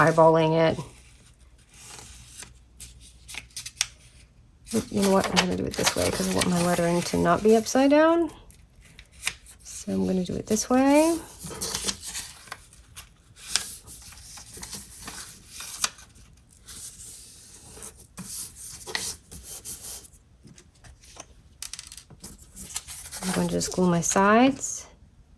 it. You know what, I'm going to do it this way because I want my lettering to not be upside down. So I'm going to do it this way. I'm going to just glue my sides.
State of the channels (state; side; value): identical; both; correlation 1.00